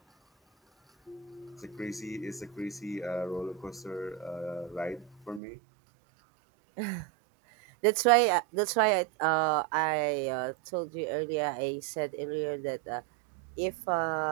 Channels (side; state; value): left; drops out; at 5.4 s